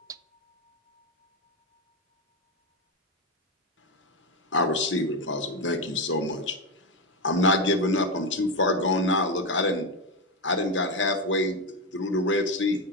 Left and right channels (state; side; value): normal; both; correlation 0.11